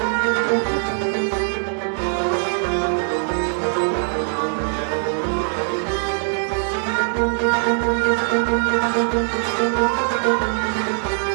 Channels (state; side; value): silent; left; 65 dB below the other